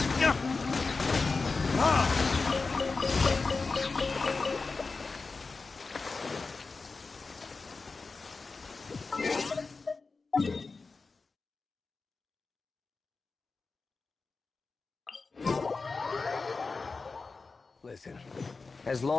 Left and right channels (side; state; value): right; quieter; 4.1 dB